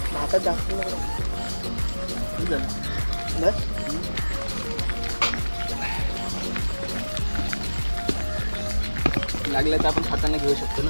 भातात जास्त बस. लागलं तर आपण हाताने घेऊ शकतो ना.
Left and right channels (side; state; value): both; inverted; correlation -1.00